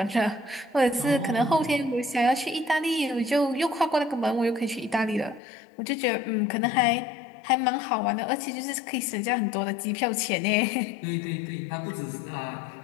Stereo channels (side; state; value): right; drops out; at 5.4 s